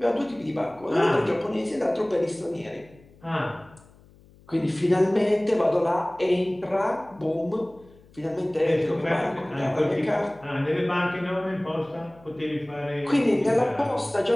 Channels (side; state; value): left; noise; hum, 26 dB below the sound